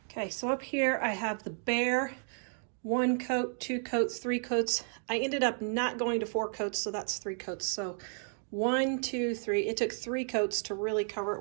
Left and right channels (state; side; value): silent; left; 56 dB below the other